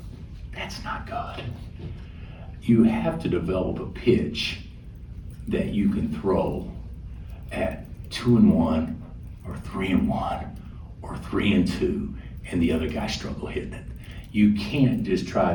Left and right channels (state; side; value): identical; both; correlation 1.00